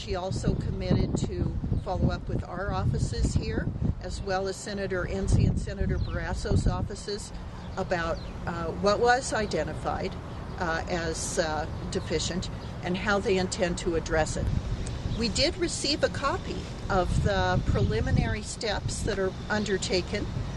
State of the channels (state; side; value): identical; both; correlation 1.00